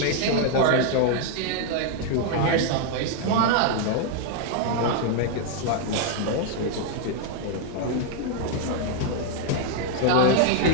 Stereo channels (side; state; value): both; different; correlation 0.00